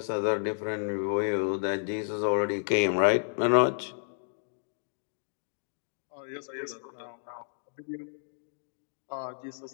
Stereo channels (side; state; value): right; silent; digital silence